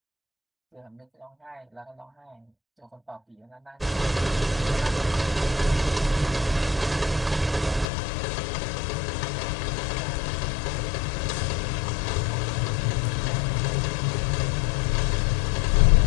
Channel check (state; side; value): drops out; right; at 7.9 s